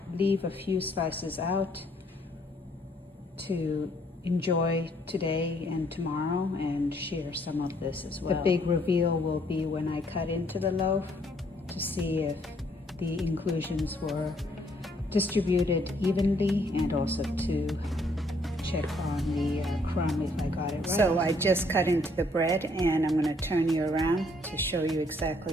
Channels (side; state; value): both; normal; correlation 0.66